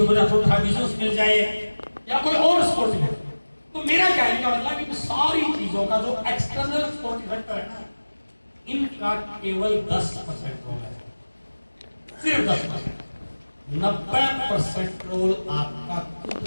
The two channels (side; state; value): both; inverted; correlation -1.00